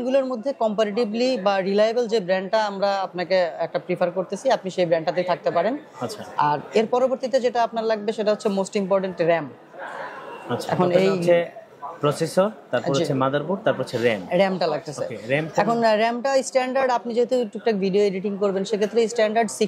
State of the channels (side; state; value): both; identical; correlation 1.00